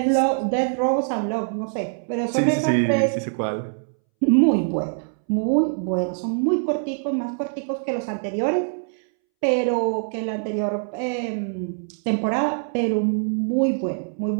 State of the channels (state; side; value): silent; left; 63 dB below the other